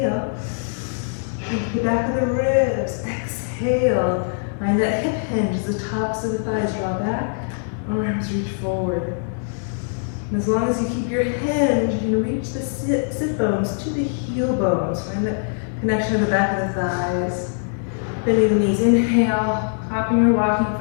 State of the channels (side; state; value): right; silent; digital silence